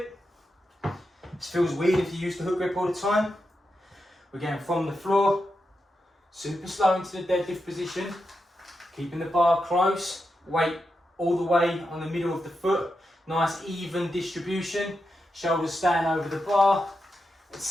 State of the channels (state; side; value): normal; both; correlation 0.87